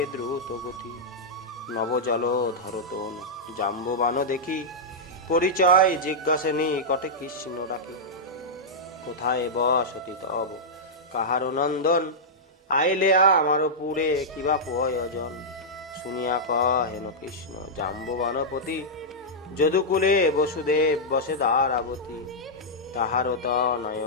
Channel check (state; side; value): normal; both; correlation -0.09